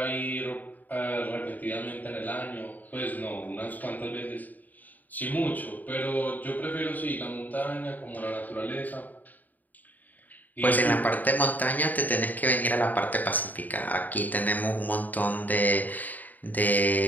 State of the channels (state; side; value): late; right; 0.082 ms